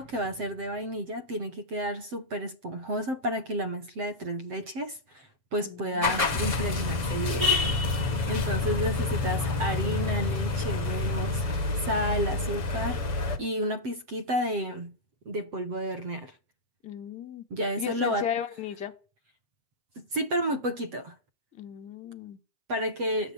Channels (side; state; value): left; late; 7.1 ms